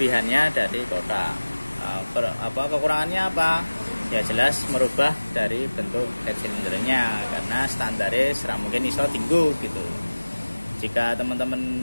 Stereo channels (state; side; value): inverted; both; correlation -1.00